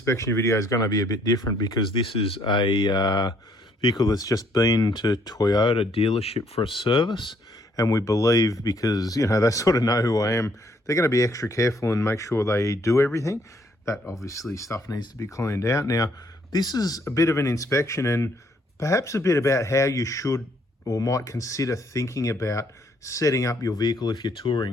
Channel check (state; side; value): normal; both; correlation 0.67